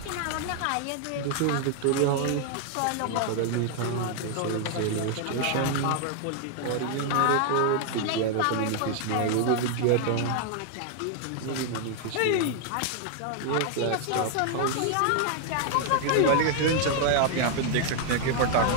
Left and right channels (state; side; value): different; both; correlation 0.00